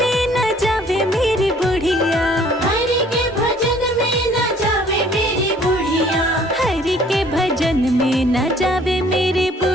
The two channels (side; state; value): both; normal; correlation 0.57